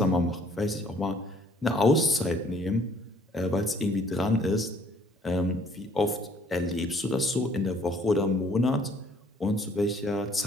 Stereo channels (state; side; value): normal; both; correlation 0.61